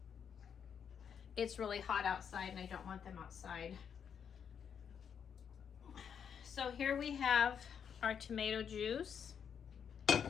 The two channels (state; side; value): quieter; right; 7.6 dB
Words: It's really hot outside and I don't want them outside. So here we have our tomato juice,